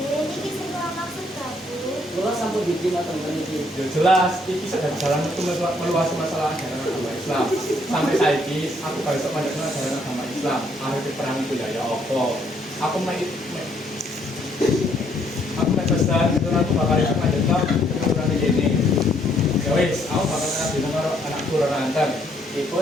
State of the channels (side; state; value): both; normal; correlation 0.68